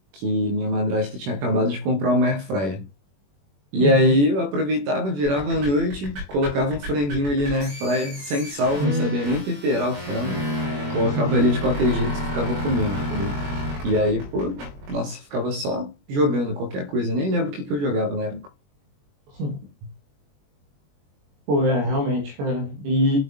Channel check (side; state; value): left; late; 21 ms